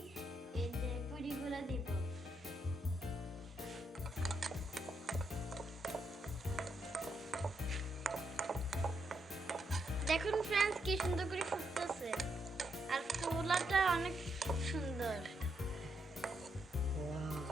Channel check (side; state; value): both; normal; correlation 0.80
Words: এই যে পুরিগুলো দিব। দেখুন ফ্রেন্ডস কি সুন্দর করে ফুটতেছে আর ফোলাটা অনেক সুন্দর।